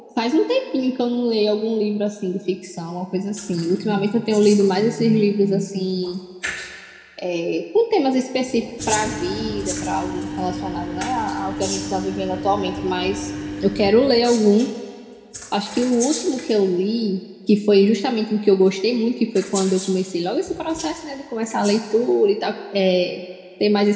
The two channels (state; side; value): identical; both; correlation 1.00